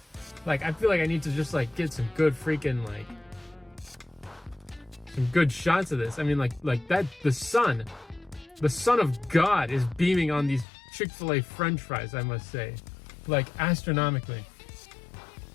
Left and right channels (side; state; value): right; drops out; at 10.7 s